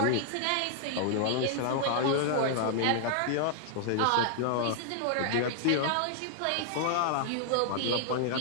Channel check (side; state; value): both; different; correlation -0.01